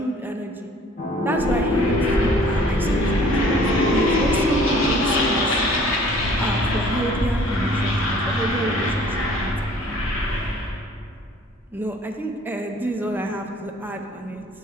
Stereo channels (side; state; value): both; normal; correlation 0.53